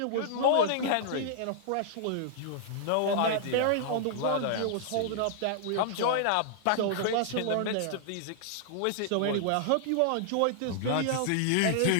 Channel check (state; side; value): different; both; correlation -0.01